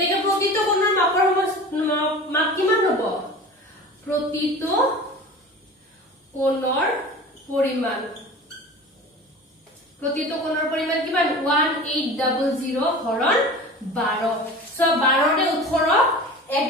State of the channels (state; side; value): normal; both; correlation 0.36